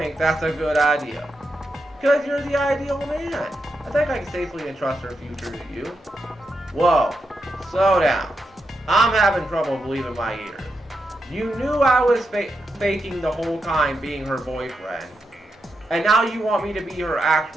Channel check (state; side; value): normal; both; correlation 0.85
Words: that's a good idea? Because you're the ideal man. I think I can safely entrust her future to you. Whoa, slow down. I'm having trouble believing my ears. You knew I was faking the whole time being her boyfriend. And now you want me to be her